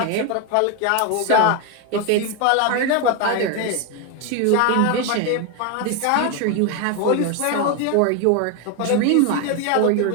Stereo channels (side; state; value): both; different; correlation 0.01